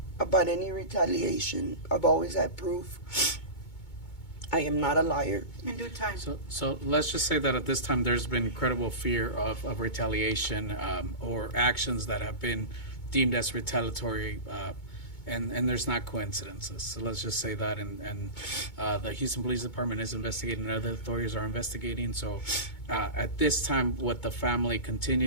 about any retaliation. I've always had proof. I am not a liar. In due time. So let's just say that at this time there's been incredible fear of retaliation or actions that have been deemed as retaliatory, and there's not coincidences. So let's just say that, and the Houston Police Department is investigating, and other authorities are investigating. So at this time, what the family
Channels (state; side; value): late; right; 2.2 ms